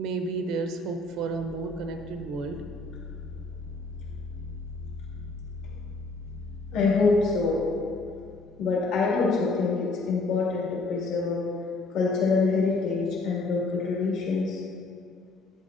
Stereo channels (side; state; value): right; quieter; 3.2 dB